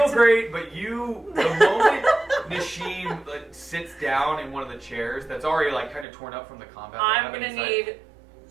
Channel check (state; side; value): drops out; left; at 6.1 s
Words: to... great, but the moment Nishim sits down in one of the chairs that's already like kind of torn up from the combat. I'm gonna need